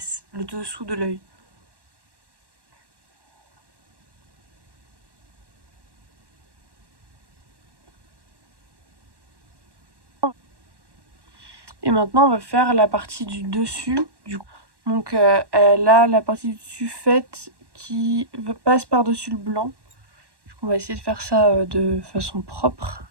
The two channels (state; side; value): late; left; 1.1 ms